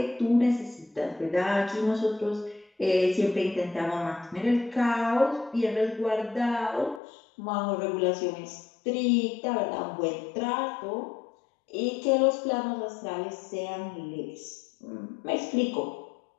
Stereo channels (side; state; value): right; drops out; at 7.0 s